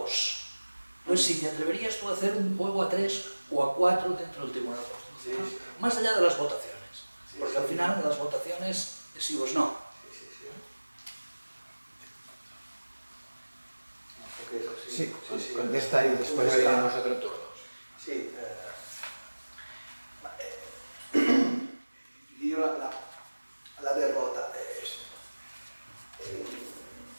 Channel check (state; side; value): inverted; both; correlation -1.00